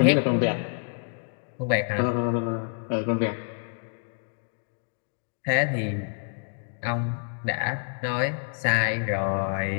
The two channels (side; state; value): right; silent; digital silence